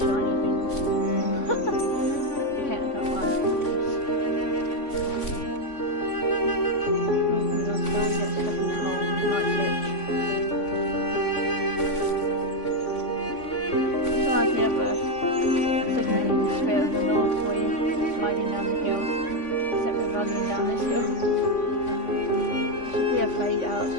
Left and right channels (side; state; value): right; late; 3.5 ms